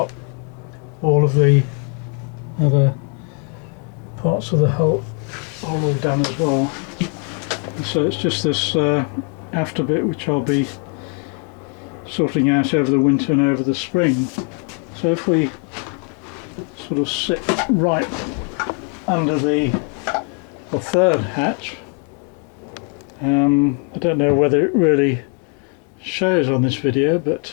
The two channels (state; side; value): quieter; right; 35.8 dB